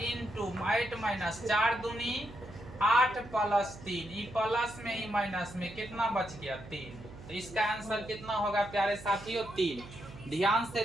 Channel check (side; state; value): right; noise; hum, 16 dB below the sound